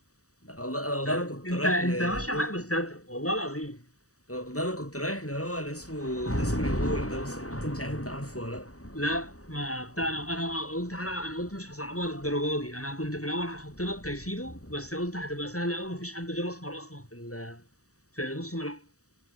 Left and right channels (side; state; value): right; late; 0.66 ms